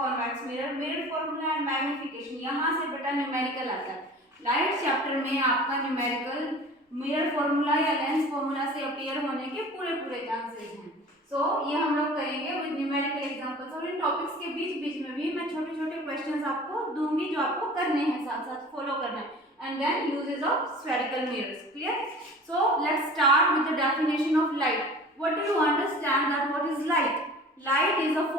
mirror, mirror formula and magnification। यहाँ से बेटा numerical आता है। Light chapter में आपका numerical mirror formula या lens formula से appear होने के पूरे चांसेस हैं। सो ये हम लोग करेंगे विद न्यूमेरिकल एग्जांपल्स, और इन टॉपिक्स के बीच में भी मैं छोटे क्वेश्चंस आपको दूंगी जो आपको करने हैं, साथ साथ फॉलो करना है। And then uses of spherical mirrors. Clear? So let's start with the definition of light. What do you understand that what is light? Light is a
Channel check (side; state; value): both; normal; correlation 0.42